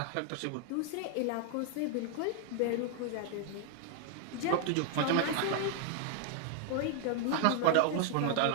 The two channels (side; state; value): both; different; correlation 0.00